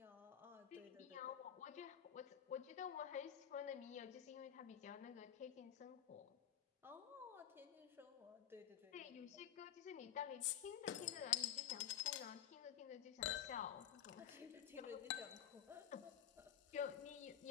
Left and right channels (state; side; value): quieter; right; 10.1 dB